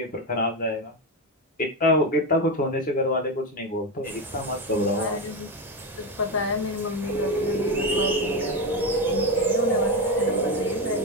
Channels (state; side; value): normal; both; correlation 0.13